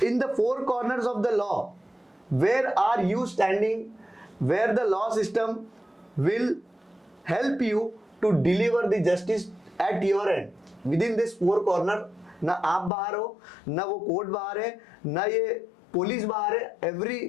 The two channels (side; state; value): right; drops out; at 12.9 s